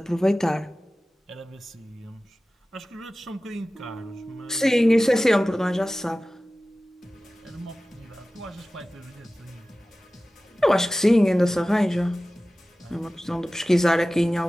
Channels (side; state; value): both; normal; correlation 0.96